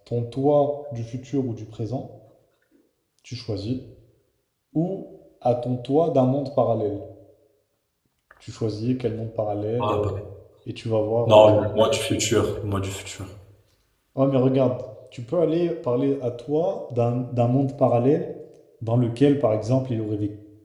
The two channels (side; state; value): both; identical; correlation 1.00